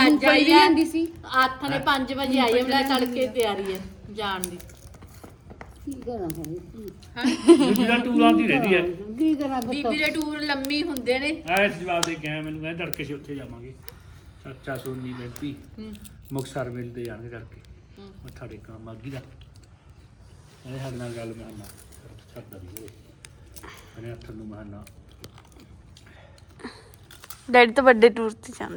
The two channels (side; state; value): both; identical; correlation 1.00